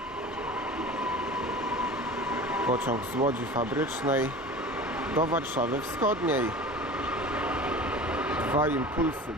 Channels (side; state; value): both; normal; correlation 0.37